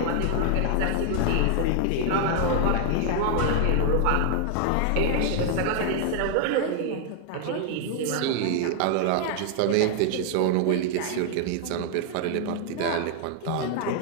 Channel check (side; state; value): both; different; correlation 0.00